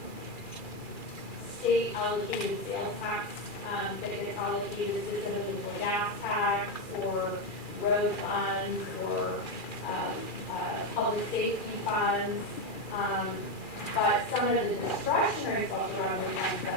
state allocated sales tax that gets allocated specifically for gas tax or road funds or public safety funds. But some of the discretionary special revenue funds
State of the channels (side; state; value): right; late; 2.4 ms